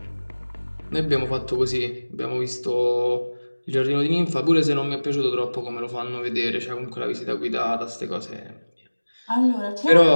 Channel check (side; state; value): both; inverted; correlation -1.00